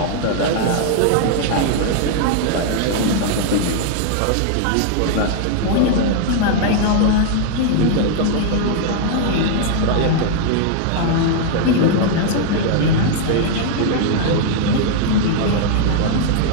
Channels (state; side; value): different; both; correlation 0.00